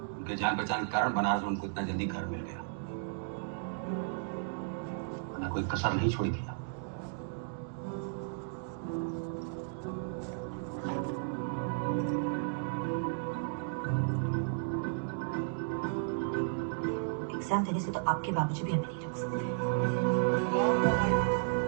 उनके जान पहचान के कारण बनारस में उनको इतना जल्दी घर मिल गया, वरना कोई कसर नहीं छोड़ी थी। एग्जाम देने से तो आपके बाबूजी भी हमें नहीं रोक सकते।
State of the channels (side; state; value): left; silent; digital silence